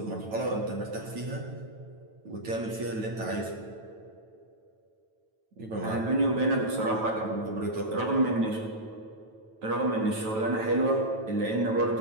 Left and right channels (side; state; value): left; late; 9.1 ms